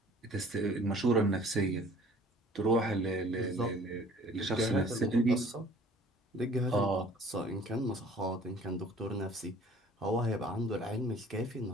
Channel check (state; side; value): normal; both; correlation 0.52